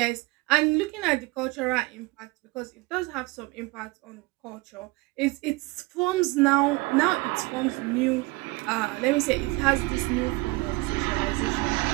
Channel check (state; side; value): quieter; left; 23.4 dB